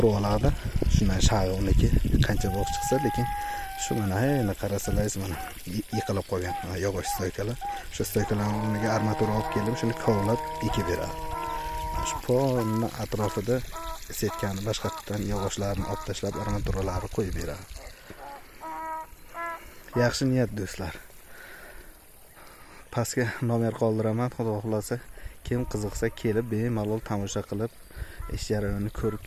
oladi. Shundan shag'i uniki qancha bo'q chiqsa, lekin shu mana endi qarasalaringiz mana yiqilib qolgan yog'och stoykalar. Shu stoykalarga armatura olib keldim, shuni kovlab ekib beradi. Shu polni atrofida setkani boshqatdan yog'ochlarni olib tashlab armaturalarni qo'yib beradi. Yaxshi niyat do'stlar. Pastga nomer qoldiraman, xudo xolasa kim qiziqsa kelib bemalol tomosha qilib ish jarayonini ko'rib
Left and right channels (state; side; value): identical; both; correlation 1.00